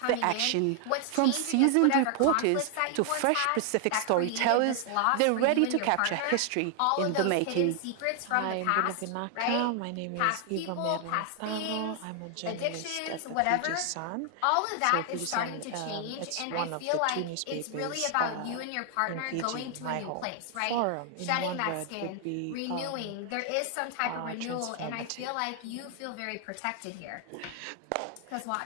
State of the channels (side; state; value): both; different; correlation 0.00